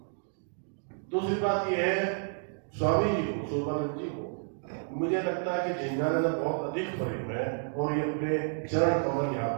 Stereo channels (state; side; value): silent; left; digital silence